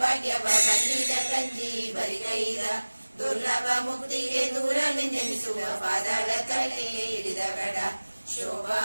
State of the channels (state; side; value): inverted; both; correlation -1.00